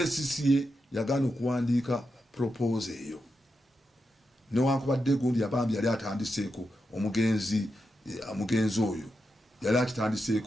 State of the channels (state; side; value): normal; both; correlation 0.87